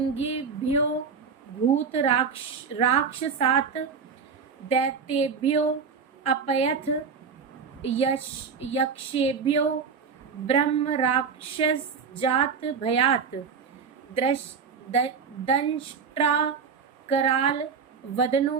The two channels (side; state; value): left; quieter; 5.8 dB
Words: भूतराक्षसात् दैत्येभ्यो अपयथ यक्षेभ्यो ब्रह्म राक्षस जात भयात दंष्ट्रा कराल वदनो